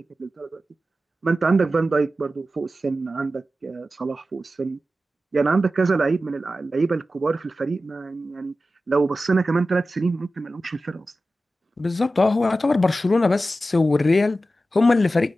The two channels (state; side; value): normal; both; correlation 0.93